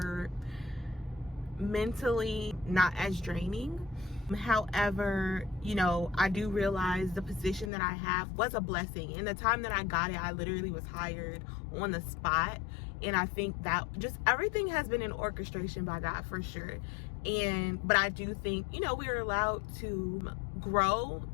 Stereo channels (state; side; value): drops out; right; at 7.7 s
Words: mentally not as draining. However, you know, I do realize the position that I have was a blessing. In the time that I got it, I literally was hired on the spot. And I think that just everything has been an orchestration by God for sure. But I do think, you know, we are allowed to grow